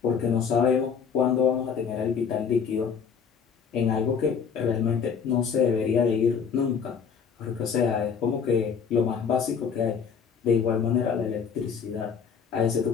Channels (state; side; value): quieter; right; 6.5 dB